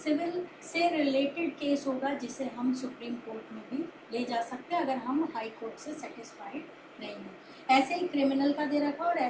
से रिलेटेड केस होगा जिसे हम सुप्रीम कोर्ट में भी ले जा सकते हैं अगर हम हाई कोर्ट से सेटिस्फाइड नहीं है। ऐसे ही क्रिमिनल का दे रखा और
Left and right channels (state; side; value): identical; both; correlation 1.00